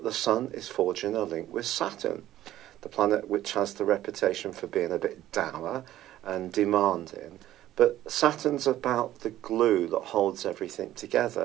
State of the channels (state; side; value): quieter; left; 13.6 dB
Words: the sun is forging a link with Saturn, the planet which has the reputation for being a bit dour and demanding. But Saturn's about the glue that holds everything